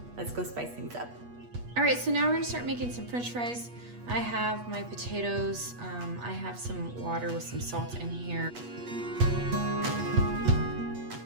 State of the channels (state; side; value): late; left; 8.3 ms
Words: let's go spice things up. All right, so now we're gonna start making some French fries. I have my potatoes. I have some water with some salt in here.